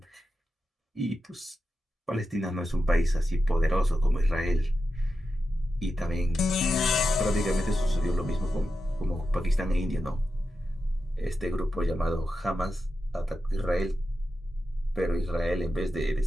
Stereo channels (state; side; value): normal; both; correlation 0.90